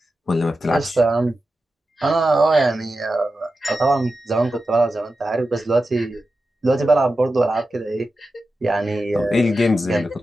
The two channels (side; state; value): both; normal; correlation 0.92